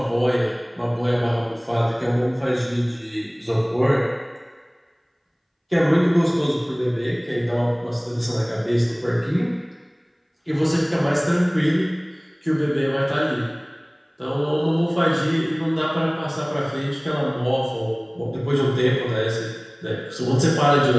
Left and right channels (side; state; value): both; identical; correlation 1.00